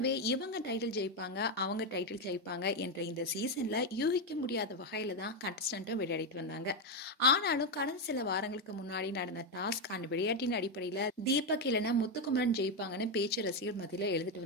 இவங்க டைட்டில் ஜெயிப்பாங்க, அவங்க டைட்டில் ஜெயிப்பாங்க என்ற இந்த சீசன்ல யூகிக்க முடியாத வகையில தான் கண்டஸ்டன்ட்டும் விளையாடிட்டு வந்தாங்க. ஆனாலும் கடந்த சில வாரங்களுக்கு முன்னாடி நடந்த டாஸ்க் அண்ட் விளையாட்டின் அடிப்படையில தீபக் இல்லைன்னா முத்துக்குமரன் ஜெயிப்பாங்கன்னு பேச்சு ரசிகர் மத்தியில எழுதிட்டு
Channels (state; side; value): normal; both; correlation 0.06